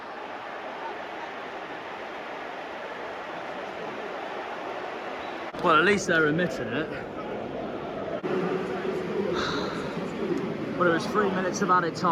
Well, at least they're admitting it. But it was 3 minutes of added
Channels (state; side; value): identical; both; correlation 1.00